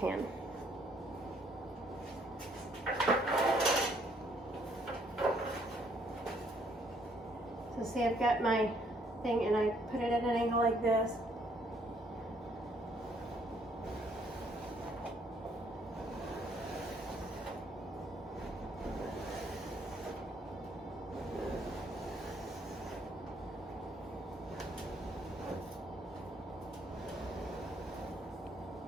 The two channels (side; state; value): both; normal; correlation 0.66